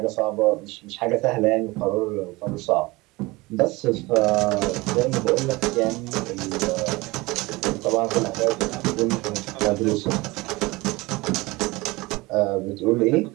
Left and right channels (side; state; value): left; quieter; 22.3 dB